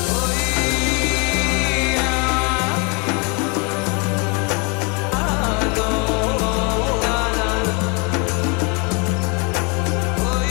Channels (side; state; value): right; quieter; 32.1 dB